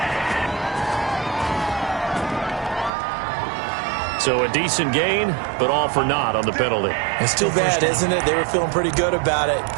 So a decent gain, but all for naught on the penalty. It's too bad, isn't it? They were feeling pretty good about it.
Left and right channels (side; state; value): left; drops out; at 2.9 s